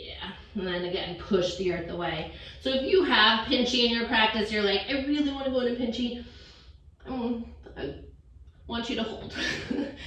and then again, push the earth away. So if you have pinchy in your practice, you're like, I really want to go into pinchy. I want you to hold.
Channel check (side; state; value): both; identical; correlation 1.00